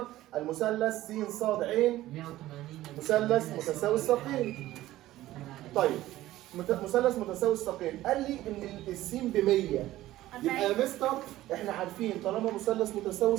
المثلث س ص ع مثلث متساوي الساقين. طيب مثلث متساوي الساقين، قال لي ان السين ب 100، يبقى يا مستر احنا عارفين طالما مثلث متساوي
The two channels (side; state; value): left; quieter; 15.5 dB